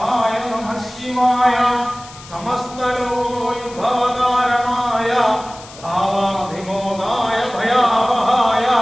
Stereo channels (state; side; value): noise; left; hiss, 19 dB below the sound